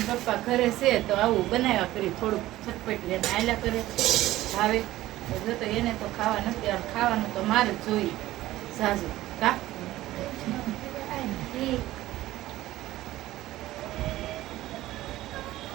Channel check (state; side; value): quieter; left; 15.9 dB